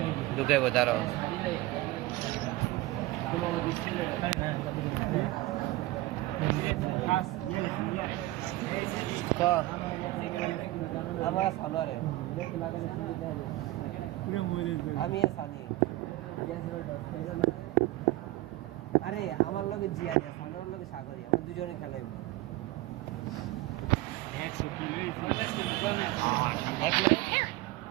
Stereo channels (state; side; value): quieter; left; 18.0 dB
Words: ঢুকাইব তারও ক আমার সানোয়ারে আমি সানি আরে আমার লগে জিয়া দিয়া সানোয়ারের লগে সাগরি আমরা দুজনে খেলাইব এক মিনিট